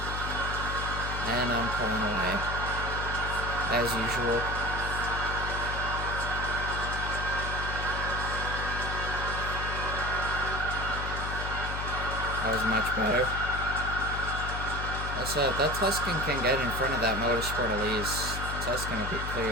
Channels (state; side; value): noise; left; hum, 4 dB below the sound